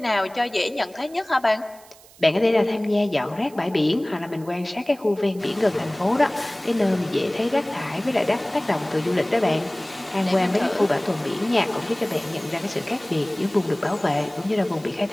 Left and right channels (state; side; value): noise; right; hiss, 24 dB below the sound